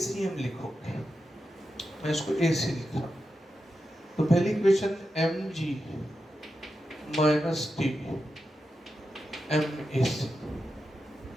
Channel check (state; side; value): normal; both; correlation 0.89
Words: लिखोगे। मैं इसको AC लिख रहा हूँ। तो पहली equation mg minus T MAC